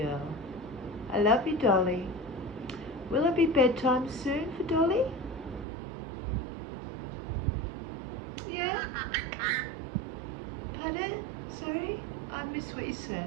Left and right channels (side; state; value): left; drops out; at 5.7 s